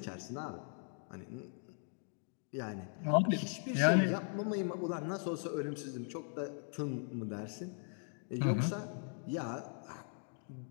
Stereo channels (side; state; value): right; silent; 52 dB below the other